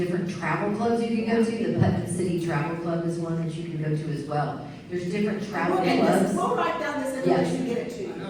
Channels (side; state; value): both; identical; correlation 1.00